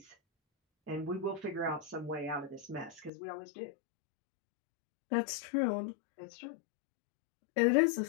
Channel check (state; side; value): drops out; right; at 3.1 s